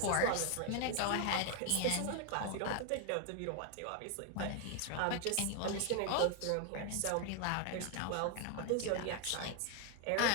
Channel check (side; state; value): both; different; correlation 0.01